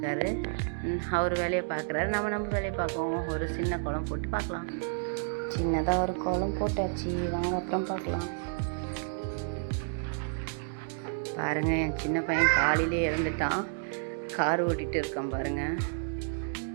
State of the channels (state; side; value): silent; left; digital silence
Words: அவர் வேலையை பார்க்குறாரு, நம்ம வேலையை பார்க்குவோம். ஒரு சின்ன கோலம் போட்டு பார்க்கலாம். சின்னதாக ஒரு கோலம் போட்டாச்சு, வாங்க அப்புறம் பார்க்கலாம். பாருங்கள், என் சின்ன பையன் காலையிலே இறந்துட்டான். கார் ஓட்டிகிட்டு இருக்கான் பாருங்கள்.